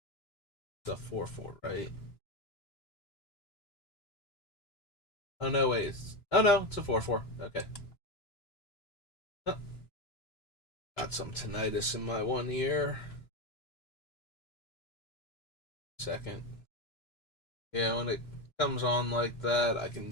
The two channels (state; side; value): late; right; 2.9 ms